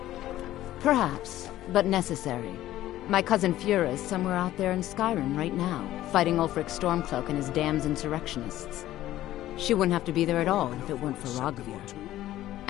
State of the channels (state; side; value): quieter; right; 14.2 dB